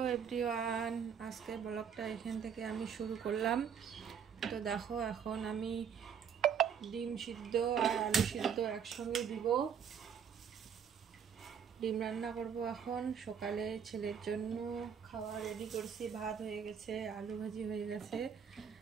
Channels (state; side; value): quieter; left; 7.5 dB